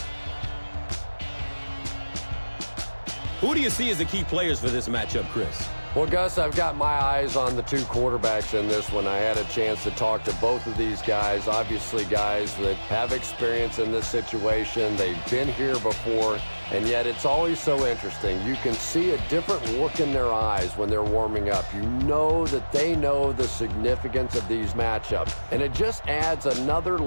Who do you see as the key players for this matchup, Chris? Well, Gus, I've got my eyes on the two quarterbacks in this one. I had a chance to talk to both of these guys, obviously guys that have experience in this situation. They've been here before, and yet it's always so interesting. You can see a different look in their eyes when they're warming up. You know that they know the significance of these matchups, and it just adds another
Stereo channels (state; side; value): inverted; both; correlation -1.00